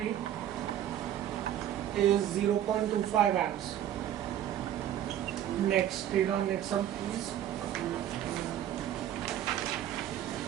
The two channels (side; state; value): left; quieter; 11.1 dB